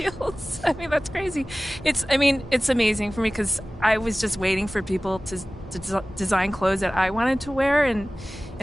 I mean, that's crazy. It's amazing for me because I was just waiting for people to design clothes that I wanted to wear, and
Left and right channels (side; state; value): both; normal; correlation 0.98